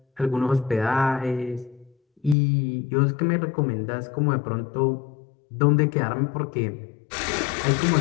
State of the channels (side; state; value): right; drops out; at 2.4 s